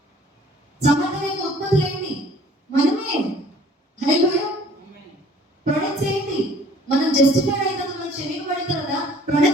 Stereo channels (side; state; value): both; normal; correlation 0.53